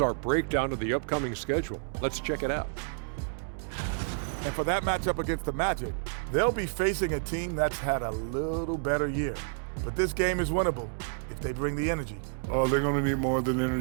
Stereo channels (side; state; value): left; silent; digital silence